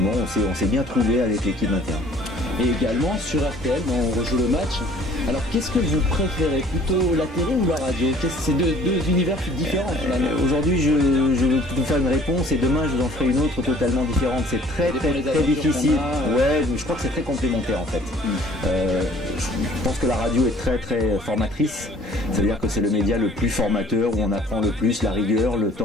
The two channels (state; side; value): normal; both; correlation 0.54